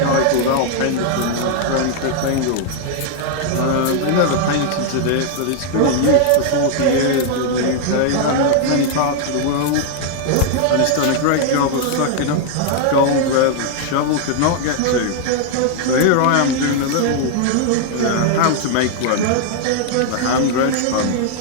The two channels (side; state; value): both; different; correlation 0.00